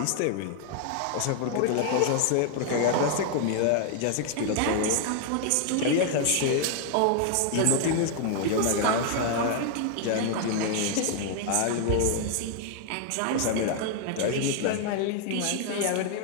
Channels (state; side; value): different; both; correlation 0.00